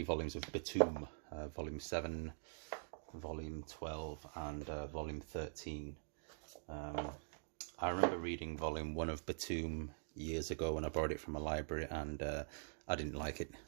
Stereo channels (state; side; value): silent; left; digital silence